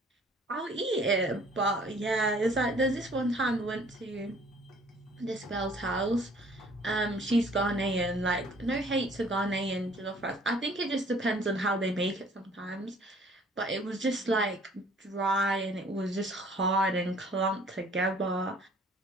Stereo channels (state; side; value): normal; both; correlation 0.56